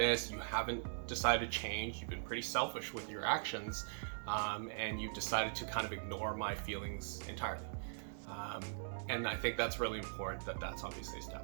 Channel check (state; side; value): silent; left; digital silence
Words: You haven't decided to change. You've been pretty selfish with your actions, and you've decided to kind of ignore my feelings entirely. And I think that's really important that that's obviously